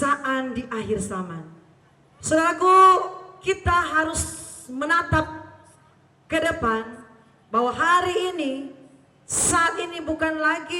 di akhir zaman. Saudaraku, kita harus menatap ke depan bahwa hari ini, saat ini bukan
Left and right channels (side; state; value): both; identical; correlation 1.00